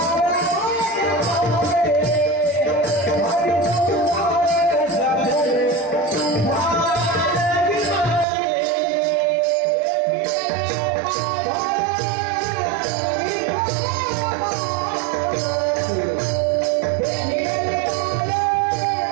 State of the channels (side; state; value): left; drops out; at 8.2 s